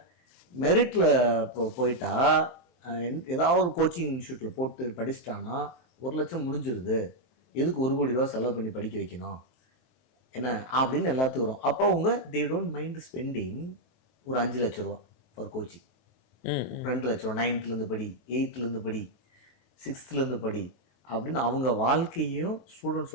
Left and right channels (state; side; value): late; right; 23 ms